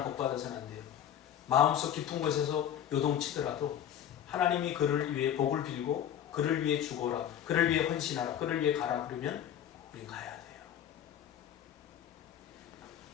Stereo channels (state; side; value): quieter; right; 10.0 dB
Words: 복받아서는 안 돼요. 마음속 깊은 곳에서 요동치더라도 하나님이 그를 위해 복을 빌고 그를 위해 죽어라, 그를 위해 헌신하라, 그를 위해 가라 그러면 우리 가야 돼요.